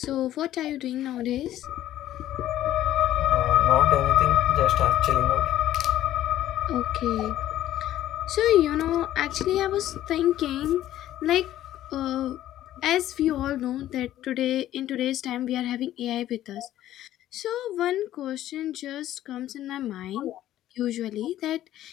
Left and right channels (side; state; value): right; quieter; 13.1 dB